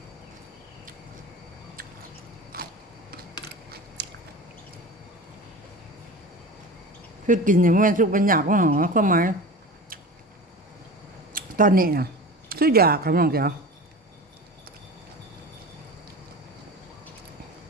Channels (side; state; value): both; normal; correlation 0.34